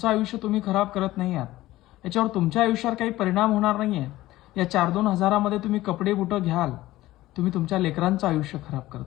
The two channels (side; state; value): right; quieter; 16.6 dB